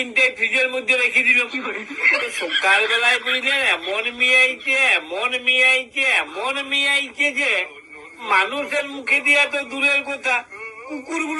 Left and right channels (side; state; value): both; identical; correlation 1.00